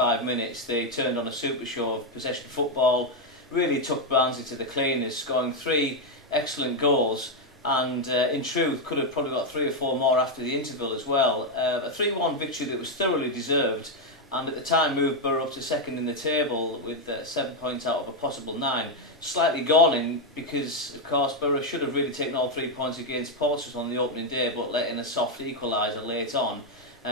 minutes, they turned on a super show of possession football, really took Barnsley to the cleaners, scoring 3 excellent goals, and in truth could have probably got 3 or 4 more after the interval as well. A 3-1 victory that was thoroughly deserved, and at the time moved Borough up to second in the table with 7 points out of a possible 9. Slightly galling because, of course, Borough should have really taken all 3 points against Portsmouth on the opening day, but let in a soft equaliser late on.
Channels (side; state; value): both; normal; correlation 0.03